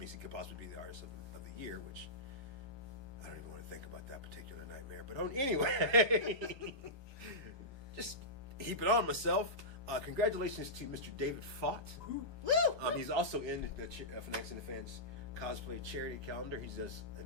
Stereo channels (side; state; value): left; late; 1.2 ms